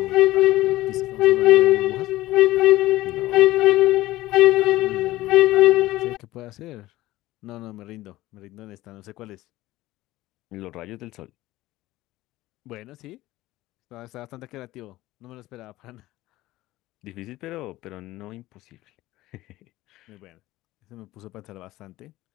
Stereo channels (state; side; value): quieter; right; 17.2 dB